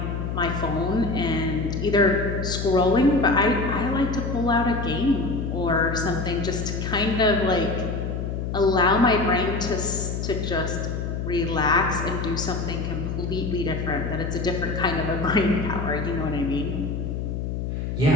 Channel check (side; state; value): left; noise; hum, 3 dB below the sound